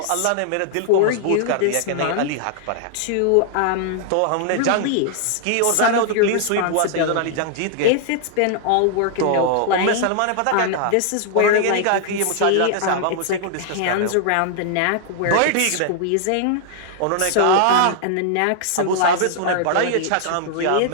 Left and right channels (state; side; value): different; both; correlation 0.00